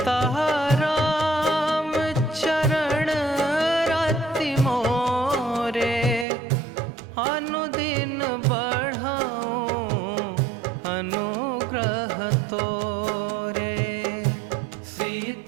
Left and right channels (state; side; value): drops out; left; at 6.2 s